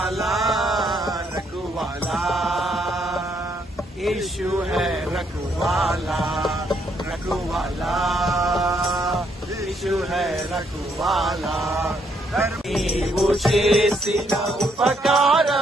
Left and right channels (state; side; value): normal; both; correlation 0.72